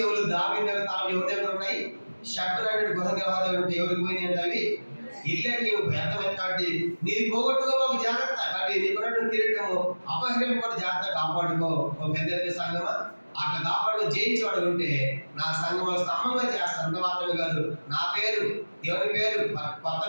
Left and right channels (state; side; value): inverted; both; correlation -1.00